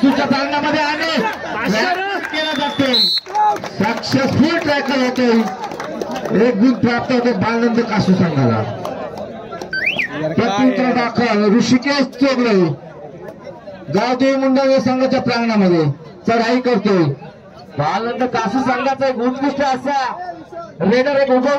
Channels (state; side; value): identical; both; correlation 1.00